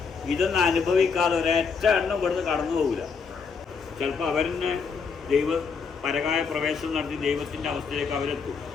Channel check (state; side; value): quieter; right; 5.5 dB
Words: ഇതൊന്നും അനുഭവിക്കാതെ ഒരൊറ്റ എണ്ണം ഇവിടുന്ന് കടന്നു പോകില്ല. ചിലപ്പോൾ അവരെന്നെ പരകായ പ്രവേശനം നടത്തി ദൈവത്തിൻ്റെ അവസ്ഥയിലേക്ക് അവരെത്തും.